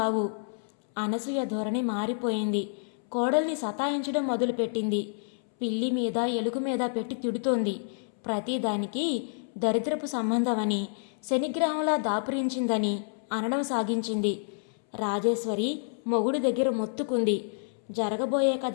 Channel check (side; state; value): right; silent; 59 dB below the other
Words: అనసూయ ధోరణి మారిపోయింది. కోడల్ని సతాయించడం మొదలుపెట్టింది. పిల్లి మీద ఎలుగు మీద పెట్టి తిడుతోంది. ప్రతిదానికి దరిద్రపు సంబంధమని, శనిగ్రహంలా దాపురించిందని అనడం సాగించింది. రాజేశ్వరి మొగుడి దగ్గర మొత్తుకుంది. జరగబోయే